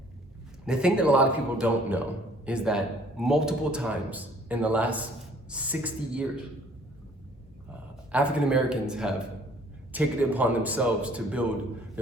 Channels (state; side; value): normal; both; correlation 0.57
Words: the thing that a lot of people don't know is that multiple times in the last 60 years, African Americans have taken it upon themselves to build